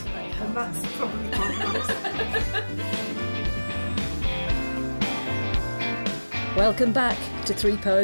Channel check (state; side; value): inverted; both; correlation -1.00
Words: very helpful. And that's probably quite nice. Welcome back to 3